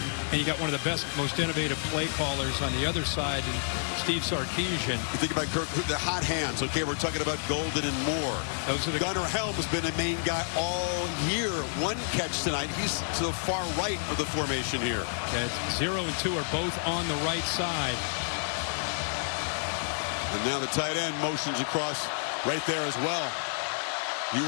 and you got one of the best, most innovative play callers on the other side, in Steve Sarkisian. You think about Kirk, the hot hands. Okay, we're talking about Golden and Moore. Those are the Gunnar Helm has been a main guy all year. One catch tonight. He's to the far right of the formation here. Yeah, 0 and 2 are both on the right side. And now the tight end motions across right there as well.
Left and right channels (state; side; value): silent; right; 56 dB below the other